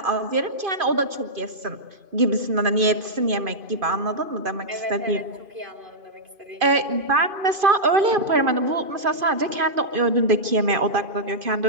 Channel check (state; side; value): late; left; 2.5 ms